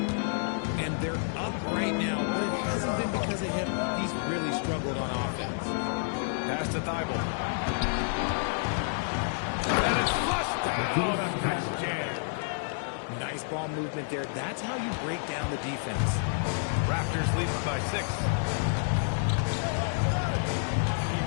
And they're up right now, but it hasn't been because of him. He's really struggled on offense. Pass to Thibault. And it's flushed down. A nice jam. Nice ball movement there. That's how you break down the defense. Raptors lead by 6.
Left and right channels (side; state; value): right; silent; digital silence